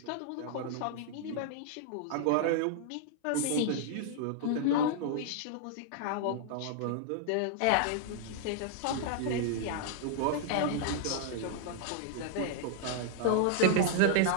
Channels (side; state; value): both; different; correlation -0.01